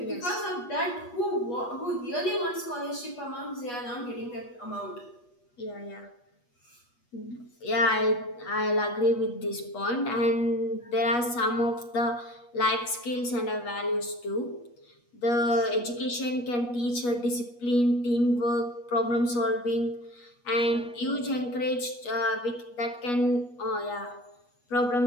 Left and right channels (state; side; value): late; right; 8.3 ms